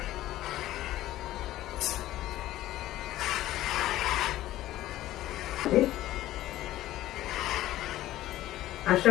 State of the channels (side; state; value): right; quieter; 14.8 dB